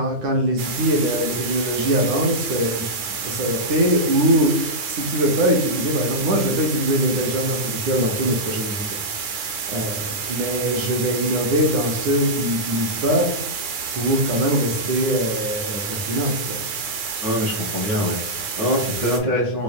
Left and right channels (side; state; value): left; late; 9.7 ms